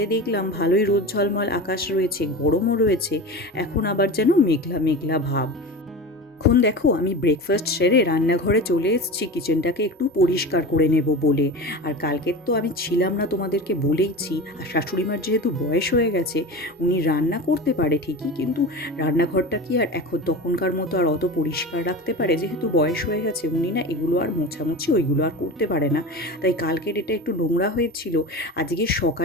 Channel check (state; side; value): normal; both; correlation 0.30